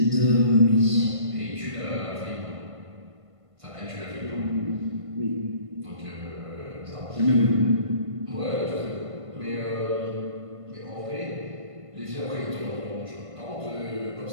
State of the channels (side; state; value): left; late; 1.5 ms